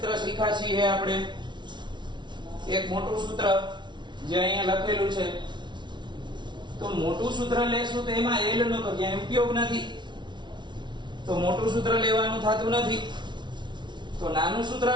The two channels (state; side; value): late; left; 0.22 ms